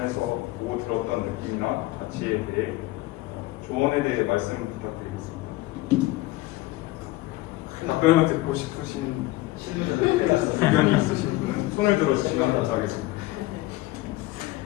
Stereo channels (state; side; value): quieter; right; 18.5 dB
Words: 보고 들었던 느낌이나 가치에 대해 조언에 대해 말씀 부탁드리겠습니다. 답변을 듣고 싶으신 의견이 있으신 분은 손을 들어주시면 감사하겠습니다.